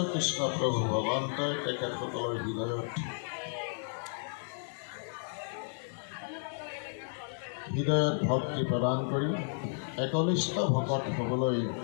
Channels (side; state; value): right; silent; digital silence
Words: কৃষ্ণ প্ৰভু ভগৱন্তই তেখেতসকলৰ হৃদয়ত ভক্তি প্ৰদান কৰি একনিষ্ঠ ভকত হ'বলৈ